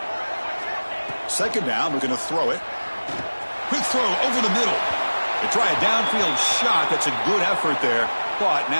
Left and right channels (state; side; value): inverted; both; correlation -1.00